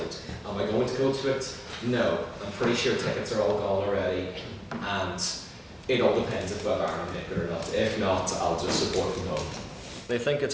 Am I going to go to it? No. I'm pretty sure tickets are all gone already, and it all depends if Ireland make it or not. If not, I'll just support from home. They think it's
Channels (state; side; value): identical; both; correlation 1.00